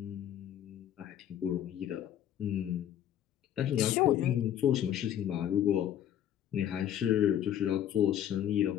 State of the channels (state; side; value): quieter; right; 10.6 dB